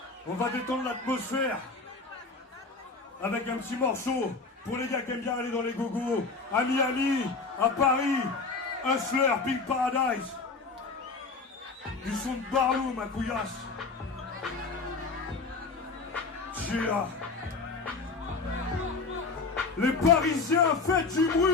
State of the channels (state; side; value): quieter; right; 4.2 dB